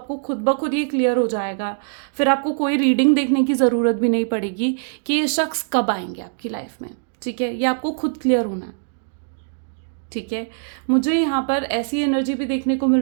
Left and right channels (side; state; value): left; silent; digital silence